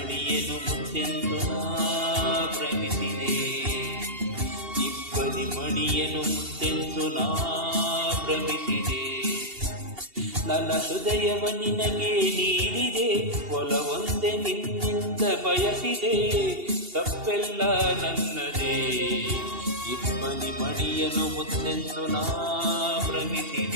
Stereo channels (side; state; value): left; late; 2.8 ms